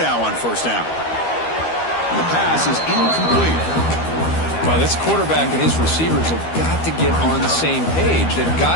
on first down. And the pass is incomplete. Well, this quarterback and his receivers have got to get on the same page. They've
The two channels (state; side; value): late; right; 12 ms